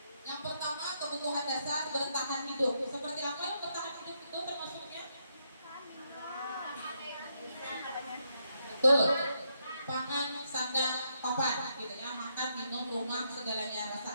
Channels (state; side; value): inverted; both; correlation -0.78